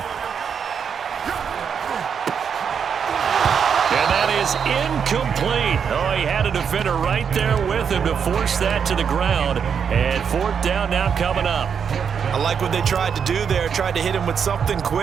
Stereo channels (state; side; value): quieter; left; 7.0 dB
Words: And that is incomplete. Oh, he had a defender right there with him to force that to the ground. And fourth down now coming up. I like what they tried to do there. Tried to hit him with something